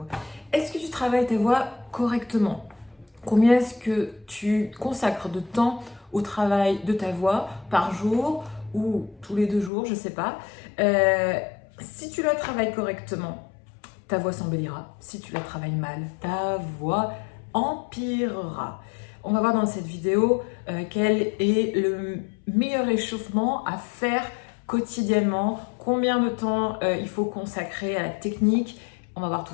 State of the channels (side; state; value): right; drops out; at 9.7 s